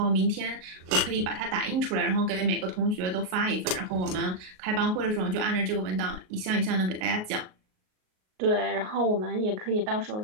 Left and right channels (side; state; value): left; late; 38 ms